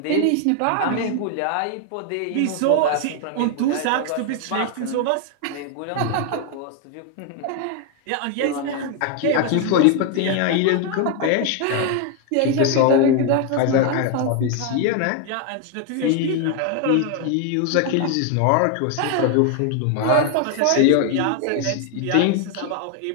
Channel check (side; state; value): both; different; correlation 0.00